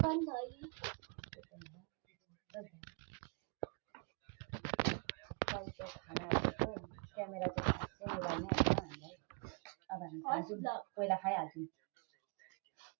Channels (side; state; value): left; quieter; 35.8 dB